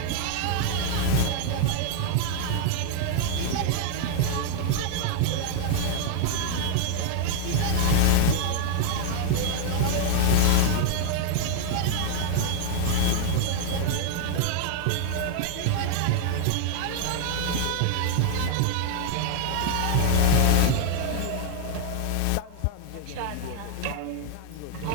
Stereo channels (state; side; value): different; both; correlation -0.01